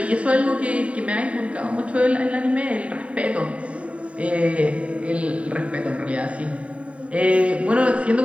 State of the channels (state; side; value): late; left; 0.064 ms